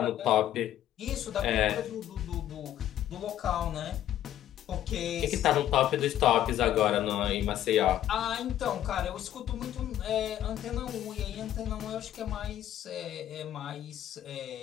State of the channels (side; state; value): right; quieter; 11.9 dB